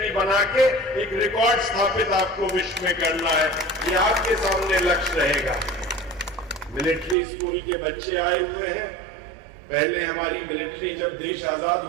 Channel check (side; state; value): left; drops out; at 7.2 s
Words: बना के एक रिकॉर्ड स्थापित आपको विश्व में करना है। ये आपके सामने लक्ष्य रहेगा। मिलिट्री स्कूल के बच्चे आए हुए हैं। पहले हमारी मिलिट्री जब देश आजाद